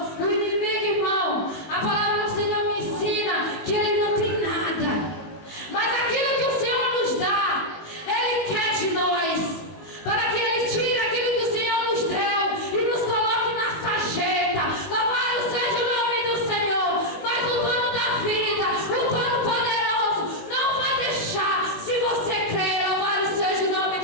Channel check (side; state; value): right; late; 18 ms